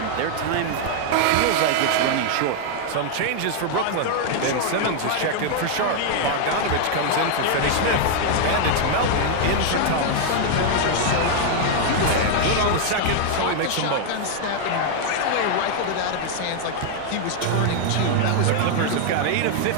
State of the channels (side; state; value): both; different; correlation 0.00